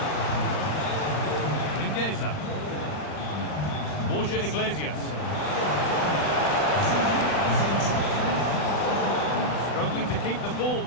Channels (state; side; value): late; right; 40 ms